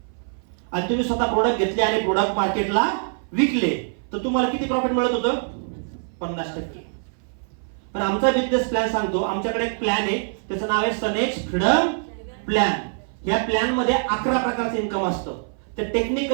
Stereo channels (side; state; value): left; silent; 58 dB below the other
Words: आणि तुम्ही स्वतः प्रोडक्ट घेतले आणि प्रोडक्ट मार्केटला विकले, तर तुम्हाला किती प्रॉफिट मिळत होतं? 50%. पण आमचा बिझनेस प्लॅन सांगतो, आमच्याकडे एक प्लॅन आहे, त्याचं नाव आहे सनेज फ्रीडम प्लॅन. या प्लॅन मध्ये 11 प्रकारचं इन्कम असतं. ते